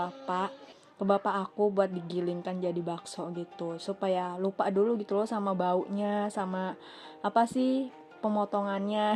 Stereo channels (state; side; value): identical; both; correlation 1.00